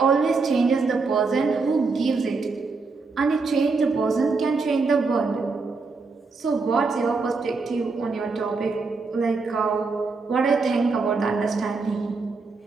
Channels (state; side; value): quieter; left; 4.2 dB